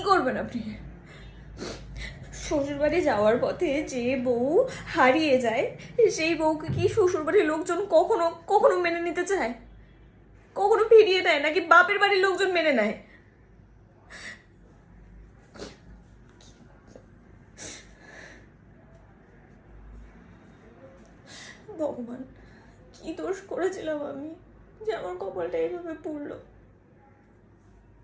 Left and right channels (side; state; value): both; identical; correlation 1.00